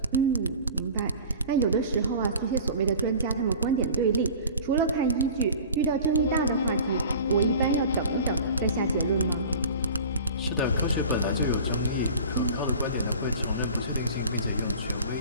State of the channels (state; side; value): inverted; both; correlation -0.40